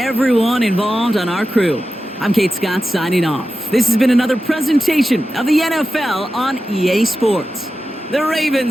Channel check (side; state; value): both; normal; correlation 0.92